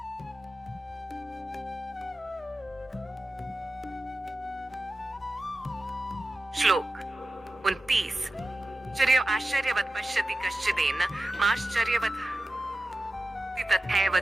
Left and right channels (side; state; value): both; normal; correlation 0.95